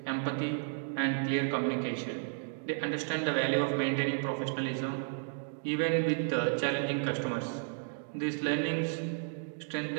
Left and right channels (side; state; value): left; silent; digital silence